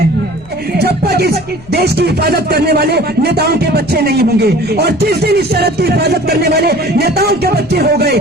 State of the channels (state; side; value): noise; left; rumble, 22 dB below the sound